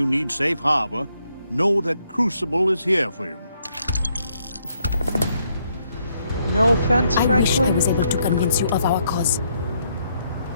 need safe harbor, know that Crucible is here for you. No offense, I Franklin. wish I was able to convince you of our cause.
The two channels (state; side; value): inverted; both; correlation -0.74